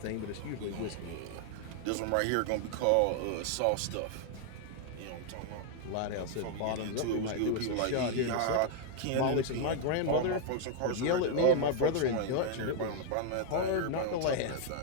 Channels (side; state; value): both; different; correlation 0.00